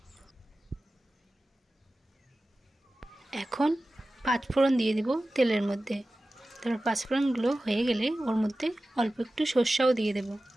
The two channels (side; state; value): both; normal; correlation 0.95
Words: এখন পাঁচফোড়ন দিয়ে দেব তেলের মধ্যে। তারপর পাঁচফোড়নগুলো হয়ে গেলে ওর মধ্যে অল্প একটু সর্ষেও দিয়ে দেব।